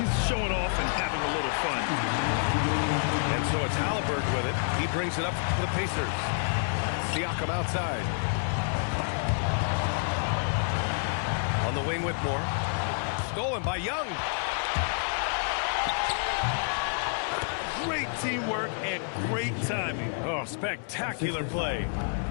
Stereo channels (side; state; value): right; silent; 59 dB below the other